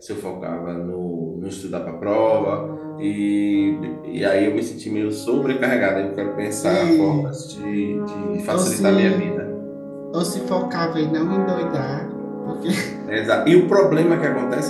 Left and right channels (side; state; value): both; identical; correlation 1.00